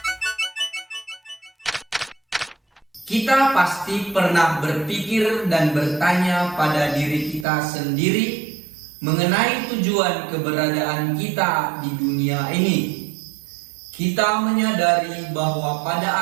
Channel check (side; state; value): left; drops out; at 7.5 s